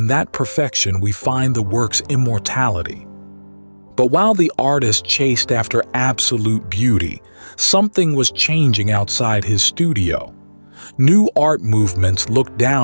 that perfection we find the work's immortality. But while the artist chased after absolute beauty, something was changing outside his studio. New art movements looked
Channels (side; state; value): both; inverted; correlation -1.00